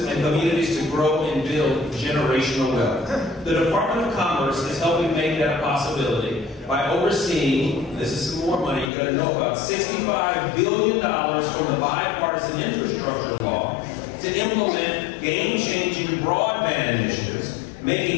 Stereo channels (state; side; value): drops out; right; at 8.9 s